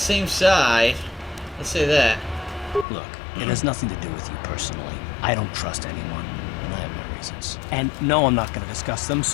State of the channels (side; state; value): right; drops out; at 2.9 s